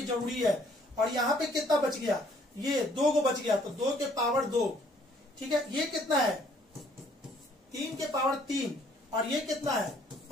जरूरी है। और यहाँ पे कितना बच गया, ये 2 को बच गया, तो 2 के पावर 2। ठीक है, ये कितना है 3 के पावर 3, और ये कितना है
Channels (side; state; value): both; normal; correlation 0.62